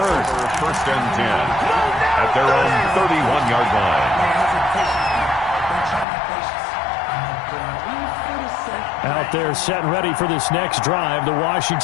1st and 10 at their own 31-yard line. Out there set and ready for this next drive, the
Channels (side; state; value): right; drops out; at 6.1 s